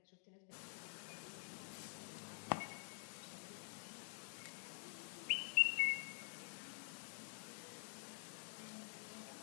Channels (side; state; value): right; silent; digital silence